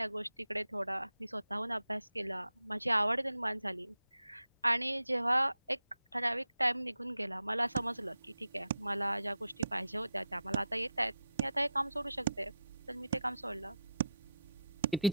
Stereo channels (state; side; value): inverted; both; correlation -0.82